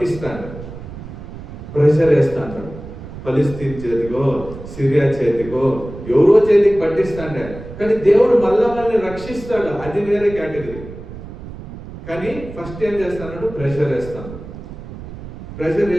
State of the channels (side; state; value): right; noise; rumble, 13 dB below the sound